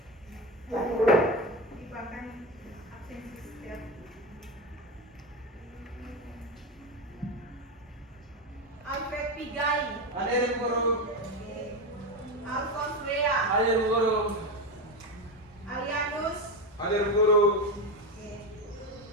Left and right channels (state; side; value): normal; both; correlation 0.17